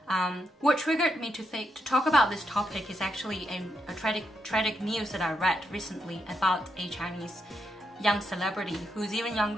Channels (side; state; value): both; normal; correlation 0.82